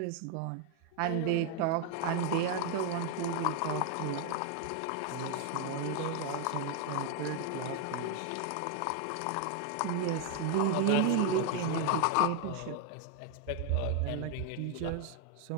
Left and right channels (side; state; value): both; different; correlation 0.00